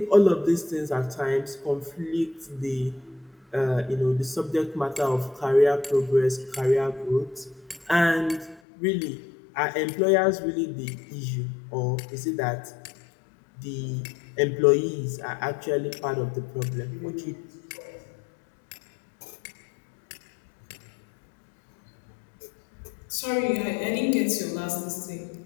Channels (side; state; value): right; drops out; at 8.6 s